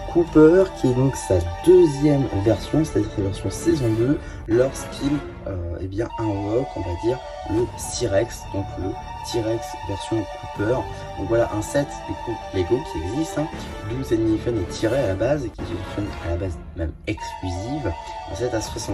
Cooper qui est donc sa deuxième version, c'est-à-dire sa version saison 2, lorsqu'il invoque, on va dire, le T-Rex, donc le T-Rex version Cooper. Donc voilà un set du coup Lego qui existe, d'où cette mini-figurine est tirée à la base et qui est une à la base même exclusive. Un set à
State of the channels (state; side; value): identical; both; correlation 1.00